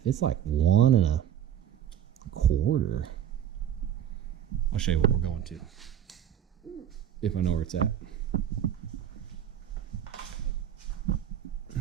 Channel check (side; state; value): left; quieter; 10.0 dB